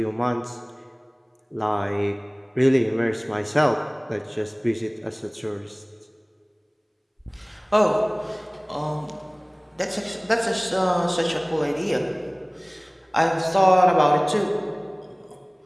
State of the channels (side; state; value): both; identical; correlation 1.00